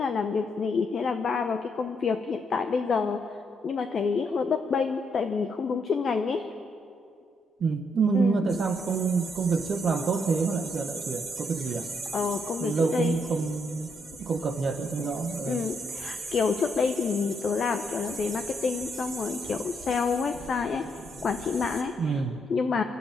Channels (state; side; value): normal; both; correlation 0.76